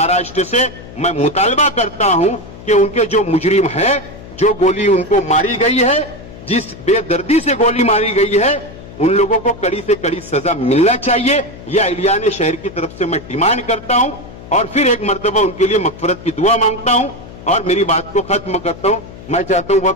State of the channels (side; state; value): left; noise; hum, 16 dB below the sound